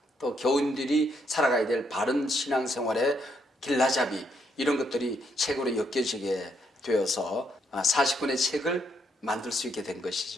또 교인들이 살아가야 될 바른 신앙생활의 길라잡이, 이런 것들이 책으로 엮여지게 되어서 40권의 책을 만들 수 있게 된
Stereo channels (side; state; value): both; normal; correlation 0.75